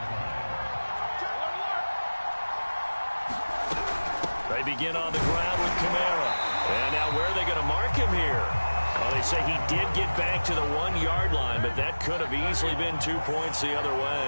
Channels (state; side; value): inverted; both; correlation -1.00